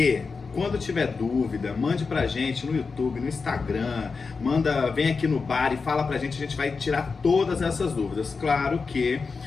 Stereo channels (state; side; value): quieter; right; 4.7 dB